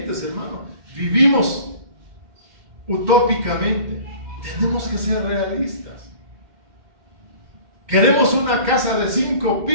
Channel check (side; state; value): left; late; 2.1 ms